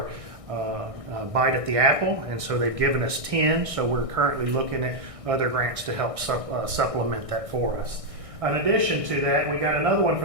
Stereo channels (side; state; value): left; late; 1.6 ms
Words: bite at the apple, and so they've given us 10, so we're currently looking at other grants to help supplement that for us. In addition to that, we got another one